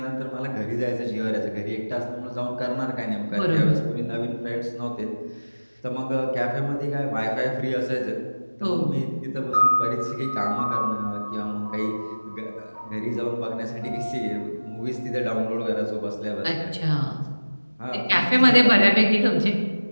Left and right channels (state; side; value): inverted; both; correlation -1.00